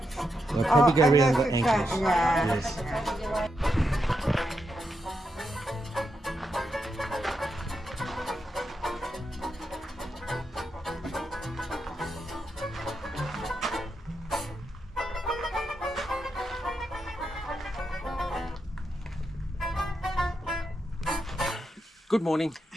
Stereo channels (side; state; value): both; normal; correlation 0.84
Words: They'll probably go and around the this is ankles. yeah. Yes. Good morning.